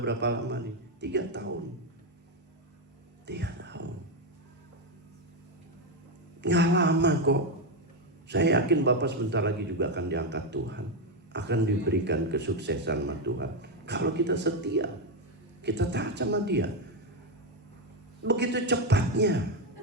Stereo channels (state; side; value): normal; both; correlation 0.07